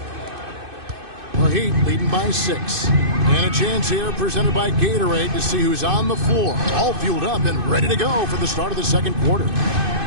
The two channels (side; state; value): left; late; 2.6 ms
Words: The Heat leading by 6. And a chance here presented by Gatorade to see who's on the floor. All fueled up and ready to go for the start of the second quarter.